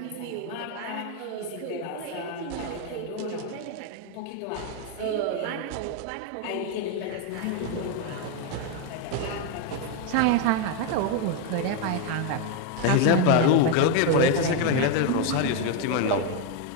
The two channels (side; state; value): both; different; correlation 0.01